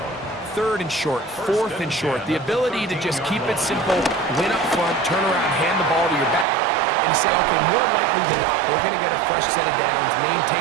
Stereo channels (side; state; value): left; drops out; at 6.5 s